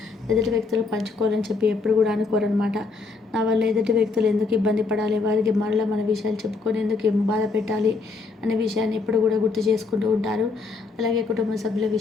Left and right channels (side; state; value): right; quieter; 4.1 dB